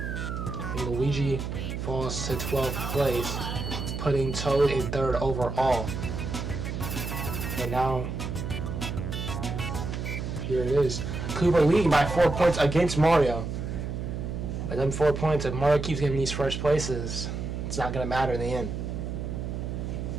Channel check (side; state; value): right; noise; hum, 4 dB below the sound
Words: And Luigi falls to 12th place, putting Toad in third overall. And now, here it is. Koopa leading by 4 points against Mario. But them 4 points, if Mario keeps getting these first places, it's not going to matter in the end.